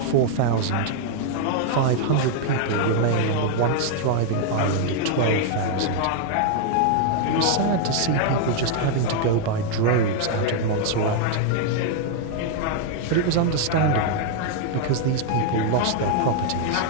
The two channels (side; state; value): both; different; correlation 0.00